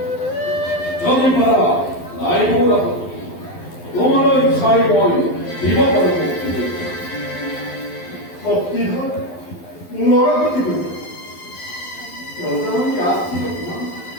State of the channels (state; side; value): late; right; 12 ms